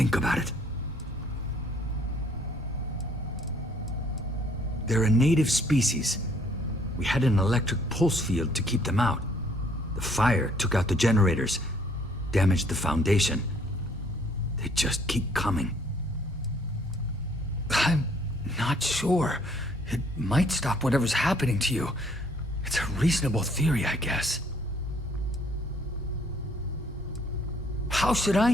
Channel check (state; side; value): normal; both; correlation 0.62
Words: about it. They're a native species. We had an electric pulse field to keep them out. The fire took out the generators, damaged the foundation. They just keep coming. I'm not sure. It might stop whatever's happening to you. It's a reasonable theory, I guess. How should I